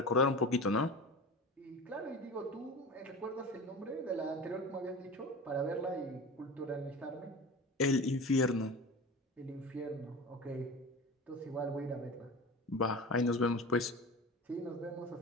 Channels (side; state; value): both; normal; correlation 0.32